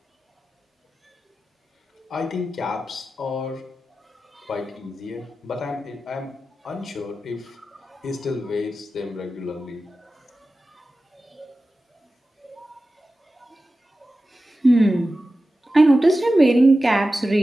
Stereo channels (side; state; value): both; normal; correlation 0.94